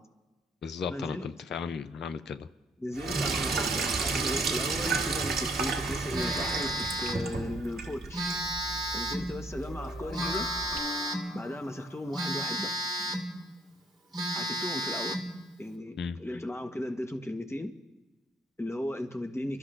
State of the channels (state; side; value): normal; both; correlation 0.65